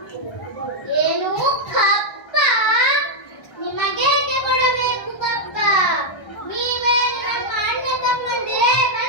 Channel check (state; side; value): late; right; 1.2 ms